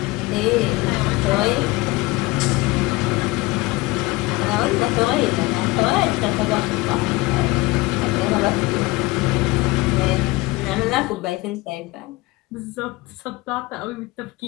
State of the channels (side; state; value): right; quieter; 21.5 dB